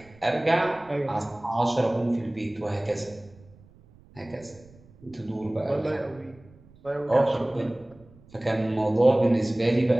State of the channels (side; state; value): right; noise; rumble, 26 dB below the sound